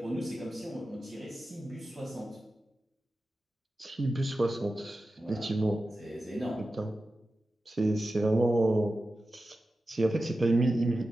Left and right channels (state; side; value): normal; both; correlation 0.93